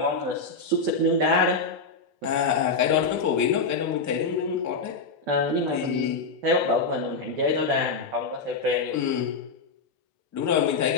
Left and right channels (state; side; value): quieter; right; 4.1 dB